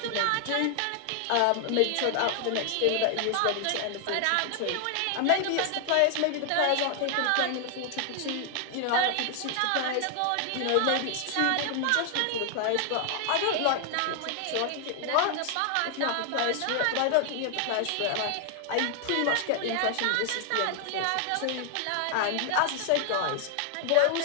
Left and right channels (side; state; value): both; different; correlation 0.00